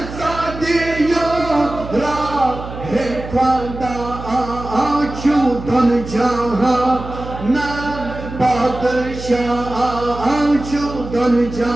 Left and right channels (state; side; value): noise; right; hum, 11 dB below the sound